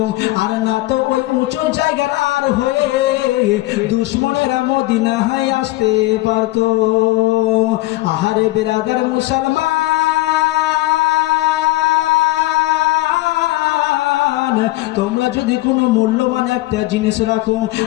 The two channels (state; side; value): quieter; right; 19.0 dB